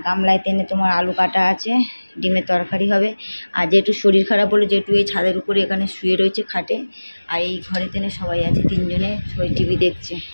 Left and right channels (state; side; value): inverted; both; correlation -1.00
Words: গামলায় তেনে তোমার আলু কাটা আছে, ডিমের তরকারি হবে। আর যেটু শরীর খারাপ বলে যেটু এই ছাদের উপরে এখানে শুয়ে রয়েছে খাটে। আর এই ঘরে তেনে সবাই আছে, তিনজনে সবাই টিভি দেখছে,